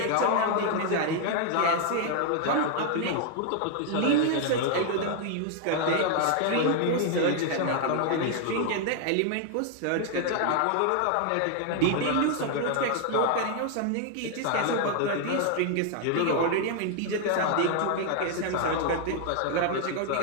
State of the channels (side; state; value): both; different; correlation 0.00